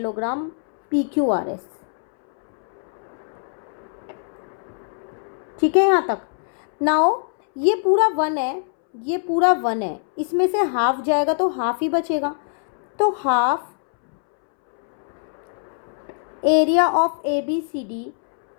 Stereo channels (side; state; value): right; silent; 62 dB below the other